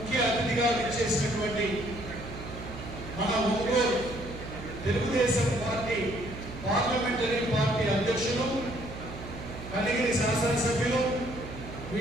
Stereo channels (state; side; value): noise; right; hum, 11 dB below the sound